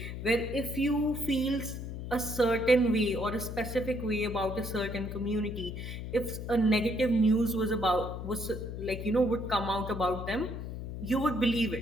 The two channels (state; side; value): noise; left; hum, 7 dB below the sound